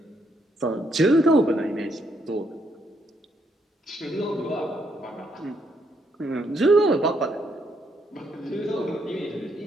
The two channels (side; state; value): both; normal; correlation 0.74